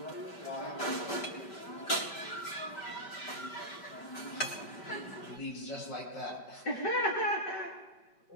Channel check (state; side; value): late; right; 5.1 ms